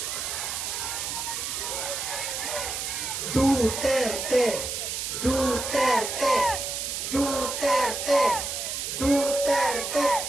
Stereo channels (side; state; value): right; noise; hiss, 3 dB below the sound